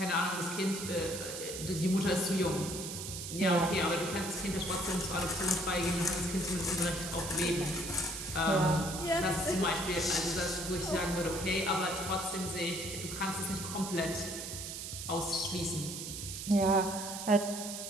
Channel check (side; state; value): right; noise; hiss, 7 dB below the sound